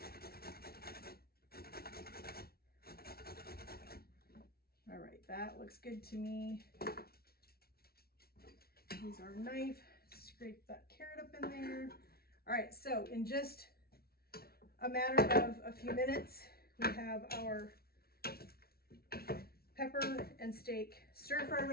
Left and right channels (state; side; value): late; right; 0.44 ms